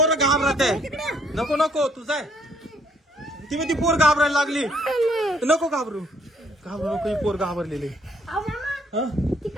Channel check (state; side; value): normal; both; correlation 0.66